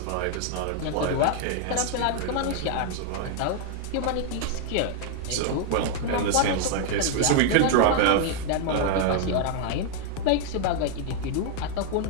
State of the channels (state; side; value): different; both; correlation 0.00